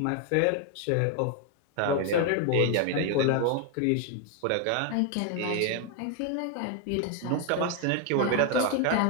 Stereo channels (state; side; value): different; both; correlation 0.01